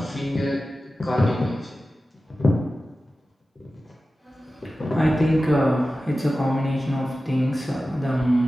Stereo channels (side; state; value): both; normal; correlation 0.94